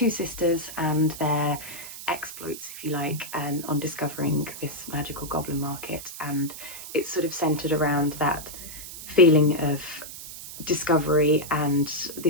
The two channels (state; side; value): noise; right; hiss, 12 dB below the sound